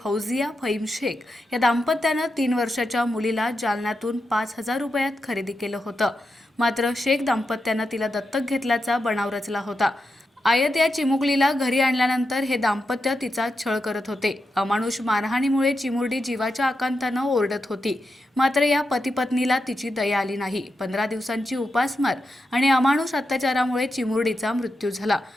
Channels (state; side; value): normal; both; correlation 0.87